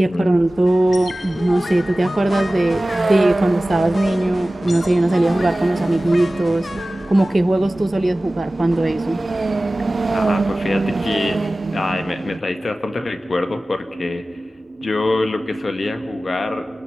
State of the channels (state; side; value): normal; both; correlation 0.97